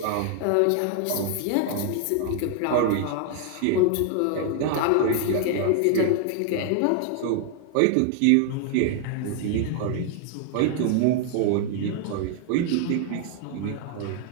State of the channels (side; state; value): both; different; correlation 0.00